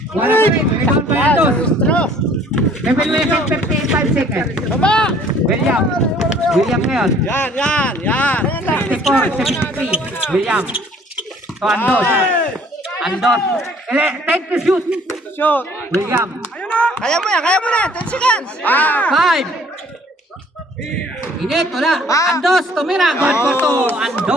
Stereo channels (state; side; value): normal; both; correlation 0.56